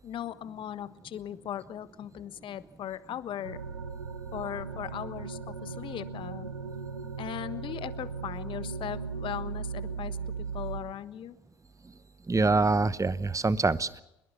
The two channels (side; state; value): both; normal; correlation 0.46